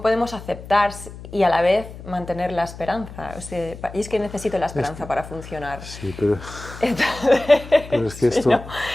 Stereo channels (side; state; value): left; noise; hum, 14 dB below the sound